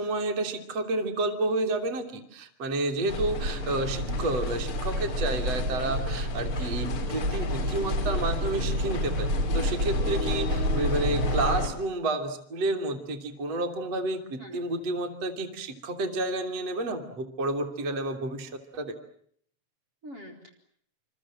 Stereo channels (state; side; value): late; left; 8.0 ms